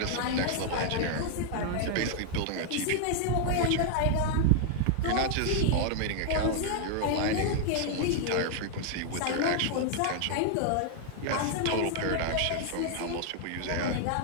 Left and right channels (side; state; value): both; different; correlation 0.00